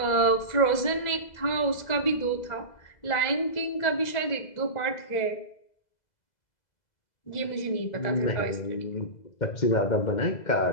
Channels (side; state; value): right; late; 2.0 ms